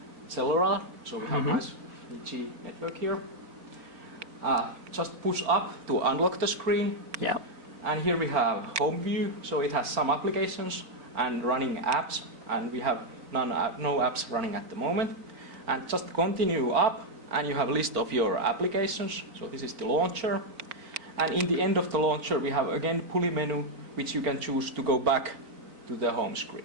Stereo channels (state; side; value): late; left; 4.3 ms